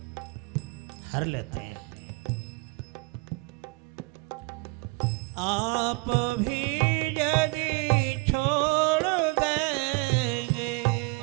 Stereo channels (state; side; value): quieter; left; 27.7 dB